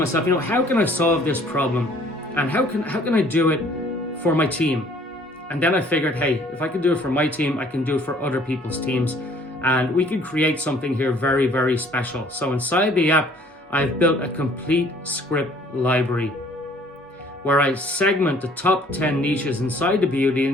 how can I solve this problem? And how can I do it for my team? And then I figured, hey, if I can do it for my team, I can do it for other people's teams. And we can create something here very, very special. So inside the app, I've built a complete script library where I segment the top 10 niches inside the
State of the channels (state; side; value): normal; both; correlation 0.57